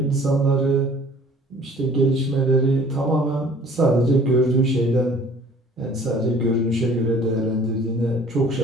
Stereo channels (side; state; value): both; normal; correlation 0.52